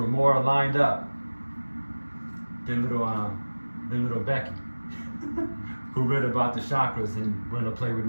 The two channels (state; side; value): inverted; both; correlation -1.00